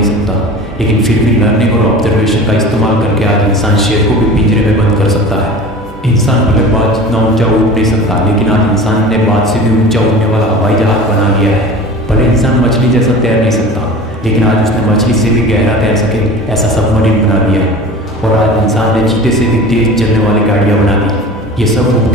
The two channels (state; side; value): normal; both; correlation 0.37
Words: सकता, लेकिन फिर भी लर्निंग और ऑब्जर्वेशन का इस्तेमाल करके आज इंसान शेर को भी पिंजरे में बंद कर सकता है। इंसान भले बात जितना ऊंचा उड़ नहीं सकता, लेकिन आज इंसान ने बात से भी ऊंचा उड़ने वाला हवाई जहाज बना लिया है। भले इंसान मछली जैसा तैर नहीं सकता, लेकिन आज उसने मछली से भी गहरा तैर सके ऐसा सबमरीन बना दिया। और आज इंसान ने चीते से भी तेज चलने वाली गाड़ियाँ बना दी। ये सब